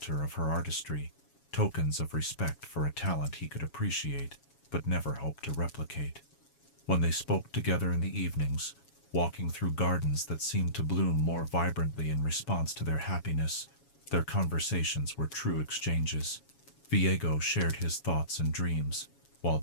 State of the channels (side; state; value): right; late; 7.2 ms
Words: of her artistry, tokens of respect for a talent he could appreciate, but never hope to replicate. When they spoke together in the evenings, walking through gardens that seemed to bloom more vibrantly in response to their happiness, their conversations were true exchanges. Viego shared his thoughts and dreams, while